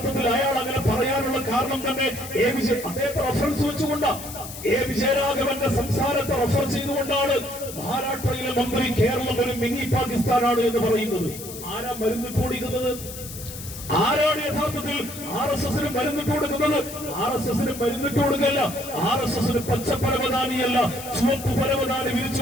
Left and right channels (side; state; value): left; noise; hiss, 12 dB below the sound